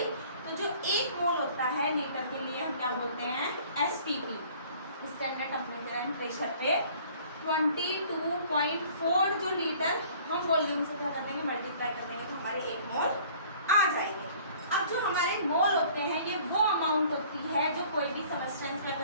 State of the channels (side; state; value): both; inverted; correlation -0.52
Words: तो जो 1 मोल होता है लीटर के लिए हम क्या बोलते हैं, STP, standard temperature and pressure पे 22.4 जो लीटर हम वॉल्यूम से क्या कर देंगे, मल्टीप्लाई कर देंगे, तो हमारे 1 मोल आ जाएंगे। अब जो हमारे मोल होते हैं, ये वो अमाउंट होती है जो कोई भी सब्सटेंस क्या